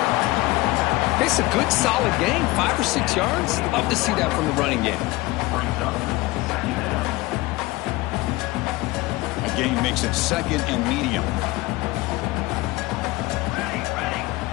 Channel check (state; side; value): quieter; right; 20.6 dB